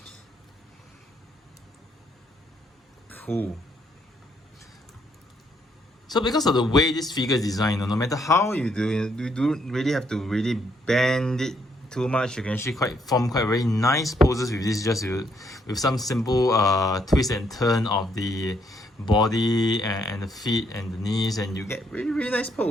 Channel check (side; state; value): both; normal; correlation 0.72